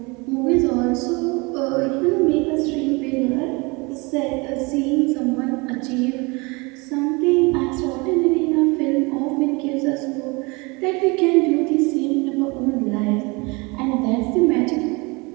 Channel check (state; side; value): quieter; left; 27.3 dB